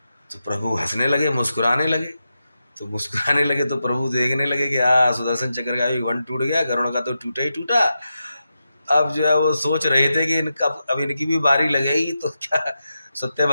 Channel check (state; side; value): inverted; both; correlation -0.89